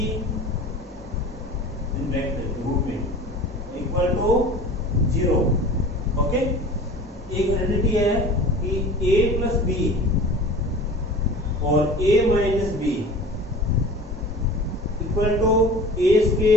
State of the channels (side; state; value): both; normal; correlation 0.40